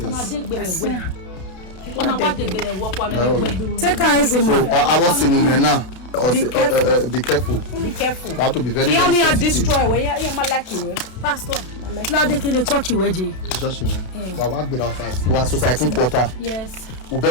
I see him. Take her easy, So man. I was saying now. Be careful. Be careful. Be careful. You have to be very, He very only had sensitive. destroy where you like you Pastor. Now they can church you, Eji. Just we work with outside. We are society quarter. Yes. We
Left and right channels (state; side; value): late; right; 32 ms